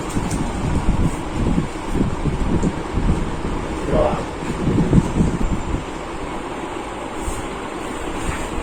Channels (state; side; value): identical; both; correlation 1.00